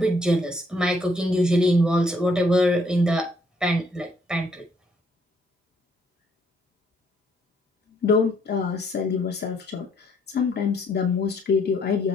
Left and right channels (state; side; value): normal; both; correlation 0.68